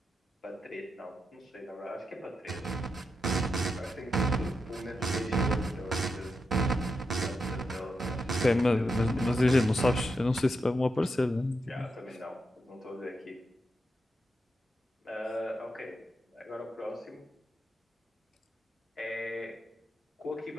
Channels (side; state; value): both; normal; correlation 0.85